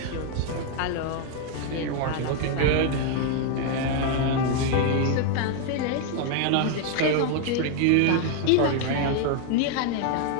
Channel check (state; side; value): different; both; correlation 0.00